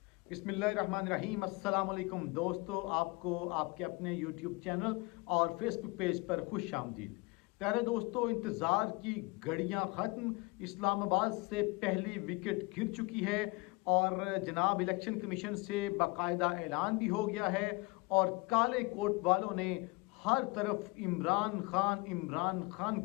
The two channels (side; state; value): right; quieter; 25.7 dB